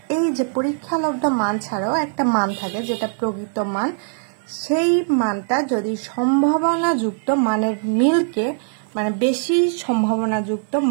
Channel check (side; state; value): left; silent; digital silence